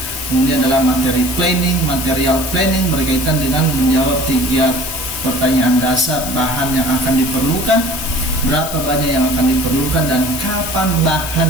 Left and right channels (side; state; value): left; noise; hiss, 9 dB below the sound